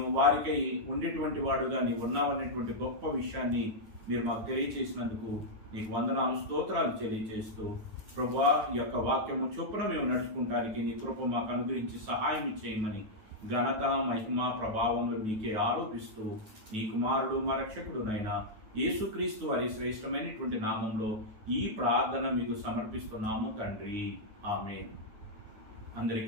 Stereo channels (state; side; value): late; left; 9.3 ms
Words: వారికై ఉండేటువంటి వాడుగా నీవు ఉన్నావనేటువంటి గొప్ప విషయాన్ని మీరు మాకు తెలియచేసినందుకు నీకు వందనాలు, స్తోత్రాలు తెలియజేస్తూ ప్రభువా ఈ యొక్క వాక్యము చొప్పున మేము నడుచుకుంటానికి నీ కృప మాకు అనుగ్రహించి సహాయం చేయమని ఘనత మహిమ ప్రభావములు మీకే ఆరోపిస్తూ నీ కుమారుడు మా రక్షకుడునైనా యేసుక్రీస్తు వారి శ్రేష్టమైనటువంటి నామంలో ఈ ప్రార్థన మీకు సమర్పిస్తున్నాము తండ్రి. ఆమేన్.